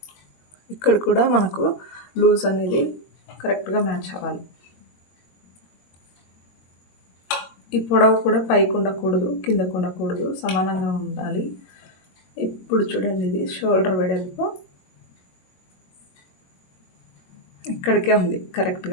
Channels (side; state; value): right; late; 22 ms